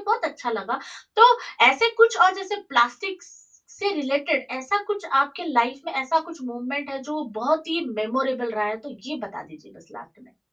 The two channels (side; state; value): both; identical; correlation 1.00